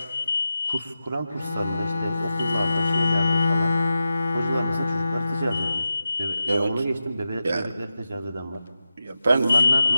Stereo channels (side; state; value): both; inverted; correlation -0.91